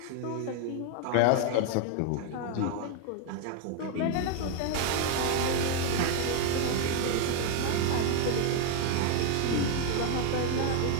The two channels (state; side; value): different; both; correlation 0.01